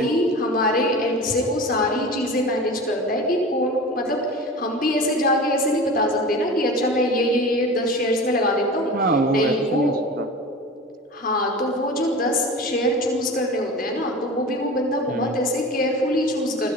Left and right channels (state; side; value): normal; both; correlation 0.34